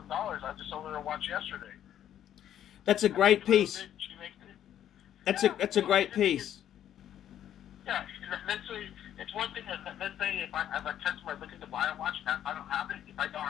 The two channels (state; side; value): quieter; right; 10.7 dB